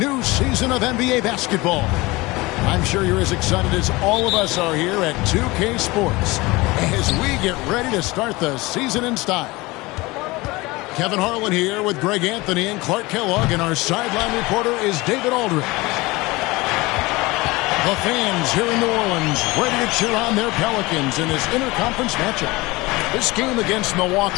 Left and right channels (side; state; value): right; quieter; 22.2 dB